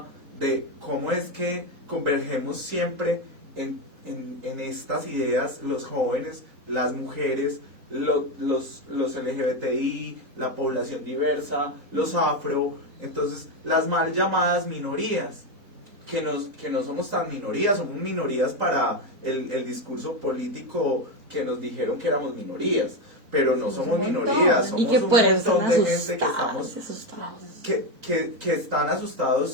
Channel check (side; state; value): left; late; 4.0 ms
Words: de cómo es que convergemos siempre en estas ideas, los jóvenes, las mujeres, los LGBTI, la población diversa, los afro, entonces las mal llamadas minorías, que no somos tan minorías, somos minorías para el discurso político que nos dijeron que éramos minorías, pero no somos un montón. minorías, Y somos que un por eso montón están de gente que asustados, estamos asustados. que están